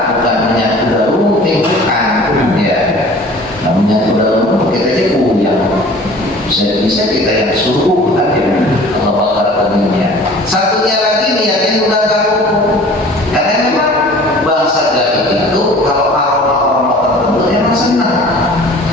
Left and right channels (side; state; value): both; normal; correlation 0.46